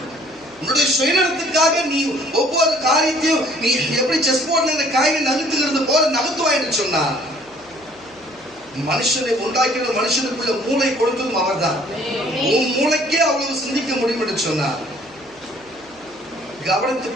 உன்னுடைய சுயநலத்துக்காக நீ ஒவ்வொரு காரியத்தையும் நீ எப்படி செஸ் போர்ட்ல காயை நகர்த்துகிறது போல நகர்த்துவாய் என்று சொன்னார். மனுஷனை உண்டாக்கின மனுஷனுக்குள்ள மூளை கொடுத்ததும் அவர் தான். உன் மூளைக்கே அவ்வளவு சிந்திக்க முடியும் என்று சொன்னார்.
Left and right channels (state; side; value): noise; left; hum, 28 dB below the sound